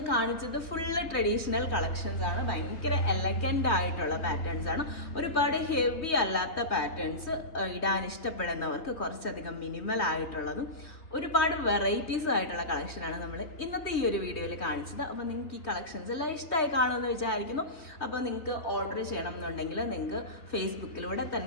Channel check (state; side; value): late; right; 3.4 ms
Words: കാണിച്ചത് ഫുള്ള് ട്രഡീഷണൽ കളക്ഷൻസ് ആണ്. ഭയങ്കര എലഗന്റ് ആയിട്ടുള്ള പാറ്റേൺസ് ആണ്. ഒരുപാട് ഹെവി അല്ലാത്ത പാറ്റേൺസ് ഇടാൻ ഇഷ്ടപ്പെടുന്നവർക്ക് കുറച്ചധികം മിനിമൽ ആയിട്ടുള്ളതും ഒരുപാട് വെറൈറ്റീസ് ആയിട്ടുള്ള കളക്ഷനാണ് നമ്മൾ ഇന്നത്തെ ഈ ഒരു വീഡിയോയിൽ കാണിച്ചത്. അപ്പോൾ നിങ്ങൾക്ക് ഈ കളക്ഷൻസ് എല്ലാം ഇഷ്ടമായി കാണുമെന്ന് വിചാരിക്കുന്നു. അപ്പോൾ നിങ്ങൾക്ക് ഓർഡർ ചെയ്യണം എന്നുണ്ടെങ്കിൽ നിങ്ങൾക്ക് ഫേസ്ബുക്കിലൂടെ